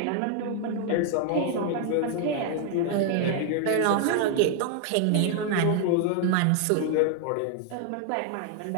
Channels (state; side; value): different; both; correlation 0.00